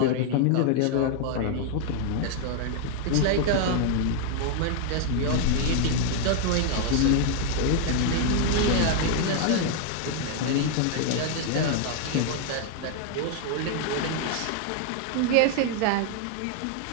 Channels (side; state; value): both; different; correlation 0.00